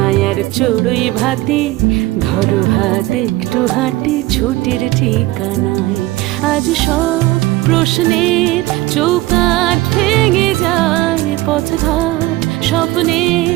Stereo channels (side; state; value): left; quieter; 18.1 dB